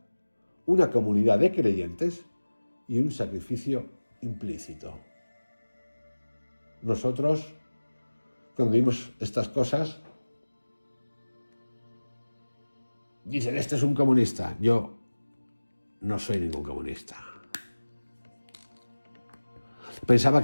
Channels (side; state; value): both; inverted; correlation -1.00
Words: una comunidad de creyentes y un sacrificio implícito. Nosotros, cuando vimos estas cosas, dicen, este es un comunista. Yo no soy ningún comunista. Pensaba